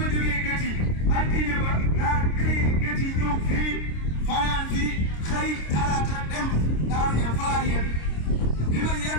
jógee Gétti altine ba laa xëy Gétti ñëw fii fanaan fii xëy talaata dem Daaru Ñaan fa laa yem bi ma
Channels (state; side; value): late; right; 26 ms